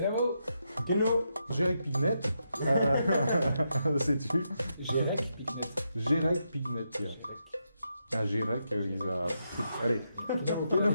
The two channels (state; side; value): inverted; both; correlation -0.83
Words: Keno. Gérec Pignet. C'est tu. Gérec Pignet. Ah, Gérec, ils a. Allez.